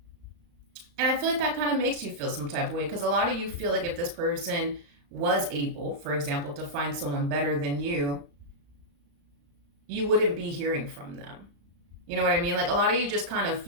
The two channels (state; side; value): late; left; 35 ms